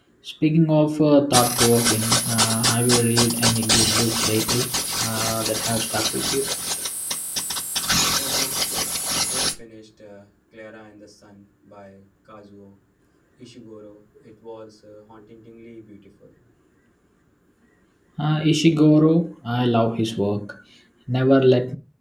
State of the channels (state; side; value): identical; both; correlation 1.00